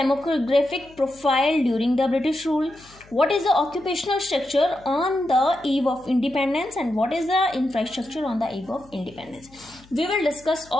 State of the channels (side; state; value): left; noise; hum, 26 dB below the sound